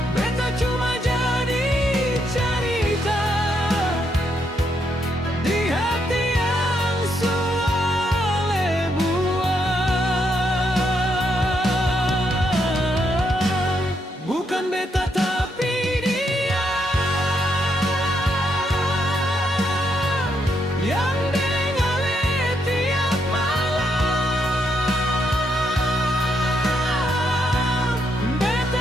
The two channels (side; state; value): both; normal; correlation 0.77